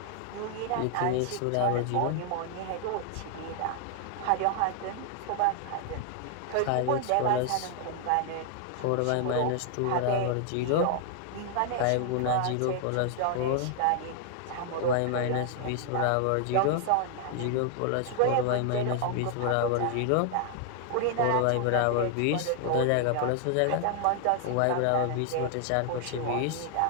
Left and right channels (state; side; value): different; both; correlation 0.00